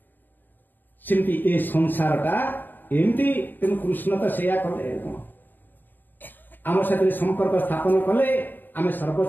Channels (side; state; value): right; late; 0.091 ms